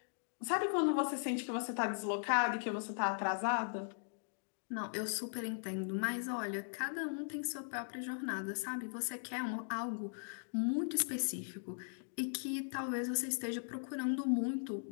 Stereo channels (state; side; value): silent; right; digital silence